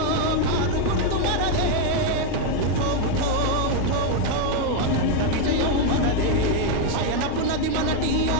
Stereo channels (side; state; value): both; different; correlation 0.01